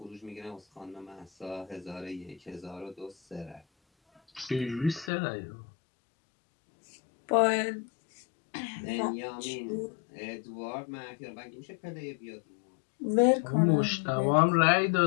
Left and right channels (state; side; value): drops out; right; at 5.1 s